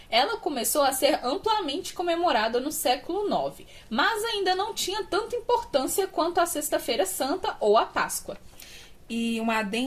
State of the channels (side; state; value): both; identical; correlation 1.00